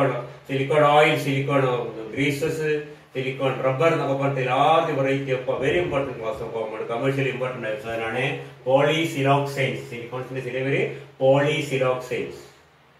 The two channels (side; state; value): both; identical; correlation 1.00